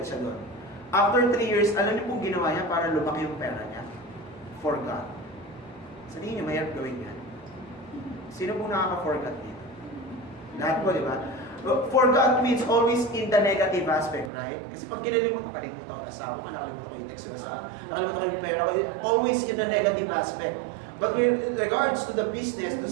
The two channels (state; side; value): drops out; left; at 14.3 s